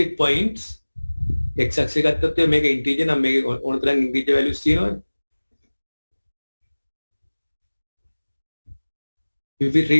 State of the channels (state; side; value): inverted; both; correlation -1.00